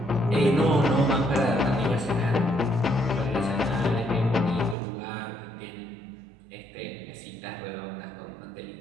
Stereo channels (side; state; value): left; drops out; at 4.8 s